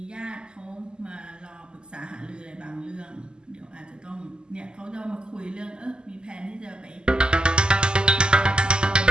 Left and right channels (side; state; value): left; late; 0.048 ms